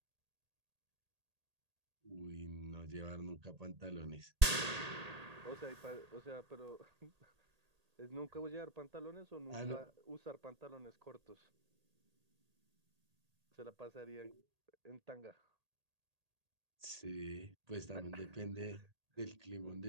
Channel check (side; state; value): left; late; 1.8 ms